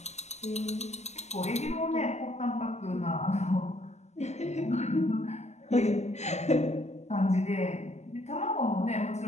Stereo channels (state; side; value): late; right; 0.33 ms